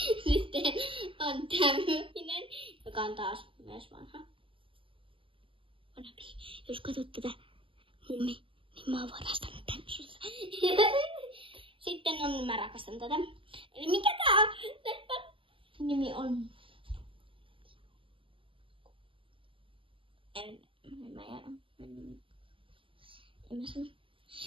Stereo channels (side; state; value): left; late; 0.25 ms